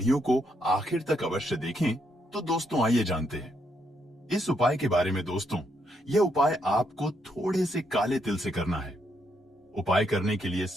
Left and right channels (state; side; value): normal; both; correlation 0.77